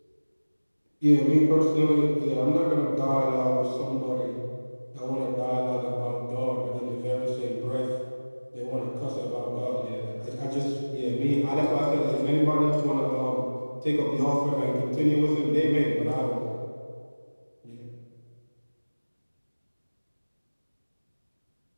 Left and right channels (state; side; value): inverted; both; correlation -1.00